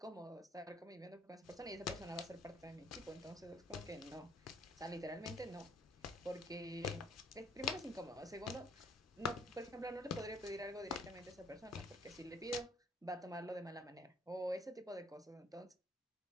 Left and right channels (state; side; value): normal; both; correlation 0.63